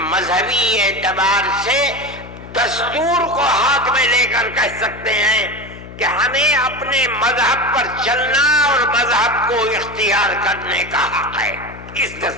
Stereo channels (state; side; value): noise; left; hum, 15 dB below the sound